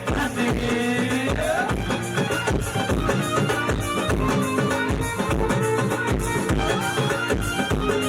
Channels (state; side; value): identical; both; correlation 1.00